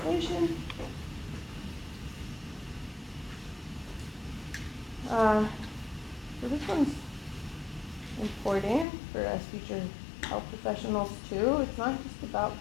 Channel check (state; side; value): drops out; right; at 8.8 s